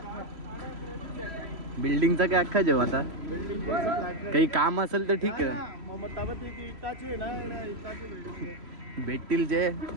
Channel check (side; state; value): left; late; 3.0 ms